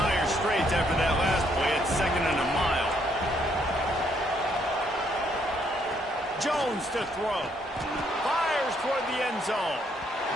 straits after that last play at 2nd and a mile. Jones to throw. Fires toward the end zone.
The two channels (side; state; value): both; normal; correlation 0.71